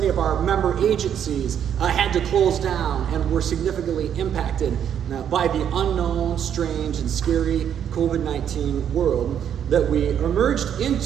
of our member agencies had to close down and were significantly impacted by the unknown, strange, and scary COVID-19 world that we emerged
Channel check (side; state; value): left; quieter; 9.1 dB